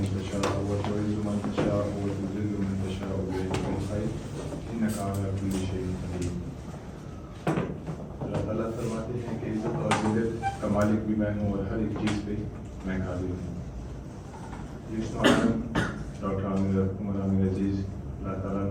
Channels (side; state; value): both; identical; correlation 1.00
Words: तशाअ व तु'इज़्ज़ु मन तशाअ व तुज़िल्लु मन तशाअ बियदिकल खैर इन्नका अला कुल्लि शैइन क़दीर। अल्लाह ताला फरमाते हैं कि इज़्ज़त और ज़िल्लत का मालिक भी मैं हूँ और हर एक चीज़ पे मैं कादिर हूँ। डॉक्टर उमर अजीज़, अल्लाह ताला